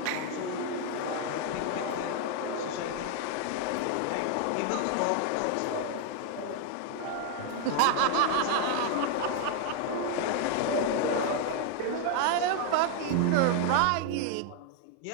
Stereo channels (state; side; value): different; both; correlation 0.00